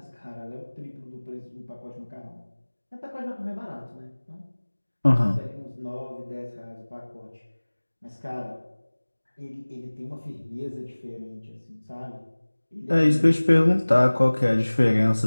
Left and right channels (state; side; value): inverted; both; correlation -1.00